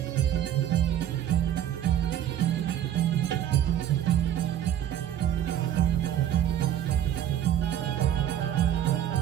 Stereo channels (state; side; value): quieter; left; 10.8 dB